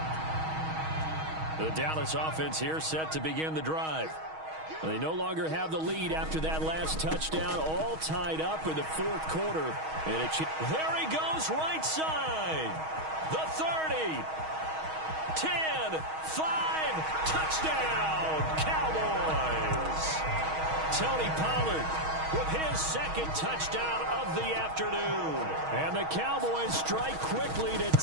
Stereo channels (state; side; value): late; left; 6.3 ms